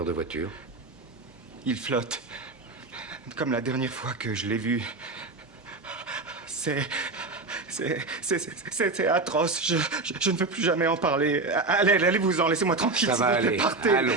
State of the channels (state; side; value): quieter; left; 3.5 dB